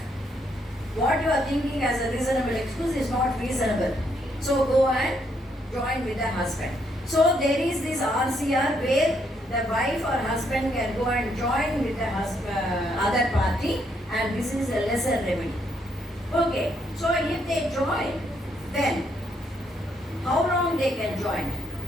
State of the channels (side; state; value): both; normal; correlation 0.74